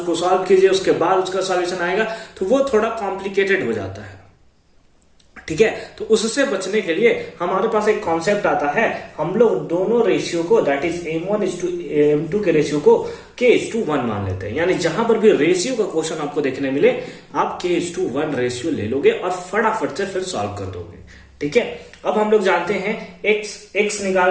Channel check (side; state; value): both; identical; correlation 1.00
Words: सॉल्व कीजिए, उसके बाद उसका सॉल्यूशन आएगा, तो वो थोड़ा कॉम्प्लिकेटेड हो जाता है। ठीक है, तो उससे बचने के लिए हमारे पास एक कॉन्सेप्ट आता है, हम लोग दोनों रेशियो को दैट इज M1:M2 के रेशियो को k:1 मान लेते हैं। यानी जहां पर भी रेशियो का क्वेश्चन आपको देखने मिले, आप k:1 रेशियो ले लोगे और फटाफट से फिर सॉल्व कर दोगे। ठीक है, अब हम लोग जानते हैं x